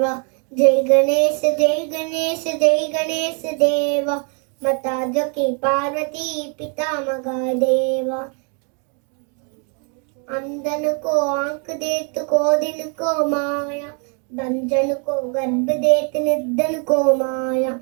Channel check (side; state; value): left; quieter; 38.7 dB